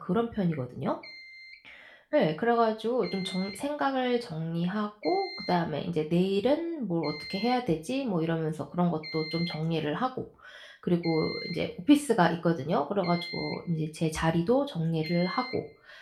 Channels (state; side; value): identical; both; correlation 1.00